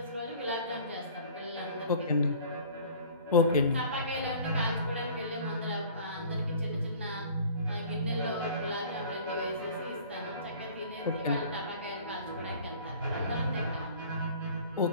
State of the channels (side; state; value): both; inverted; correlation -0.47